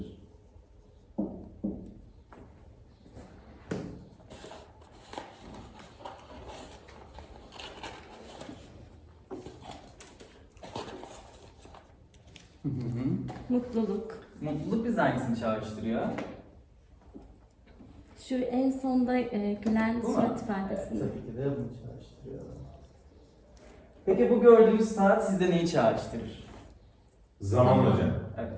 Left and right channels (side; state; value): both; identical; correlation 1.00